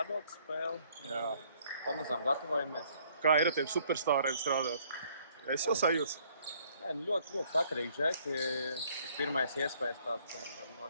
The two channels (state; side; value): inverted; both; correlation -0.63